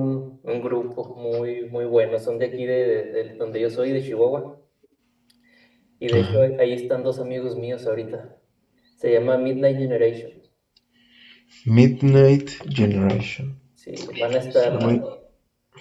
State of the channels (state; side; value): identical; both; correlation 1.00